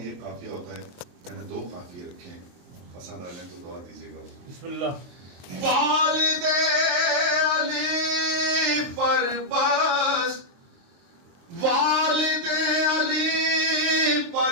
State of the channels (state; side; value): late; left; 23 ms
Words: एक काफिया होता है, मैंने दो काफिये रखे हैं, पसंद आ जाए तो दुआ दीजिएगा। बिस्मिल्लाह। वालिदे अली पर बस, वालिदे अली